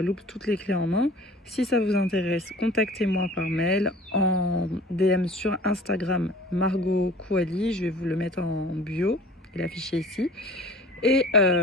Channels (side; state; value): both; normal; correlation 0.46